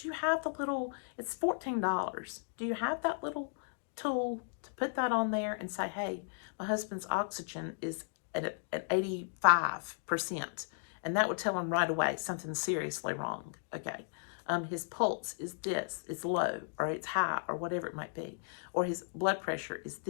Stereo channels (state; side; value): silent; right; digital silence